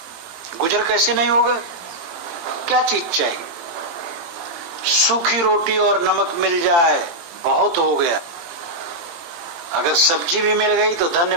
गुजर कैसे नहीं होगा? क्या चीज चाहिए? सूखी रोटी और नमक मिल जाए बहुत हो गया, अगर सब्जी भी मिल गई तो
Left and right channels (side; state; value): left; late; 18 ms